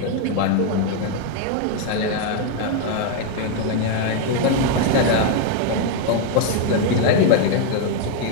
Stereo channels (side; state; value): both; different; correlation 0.01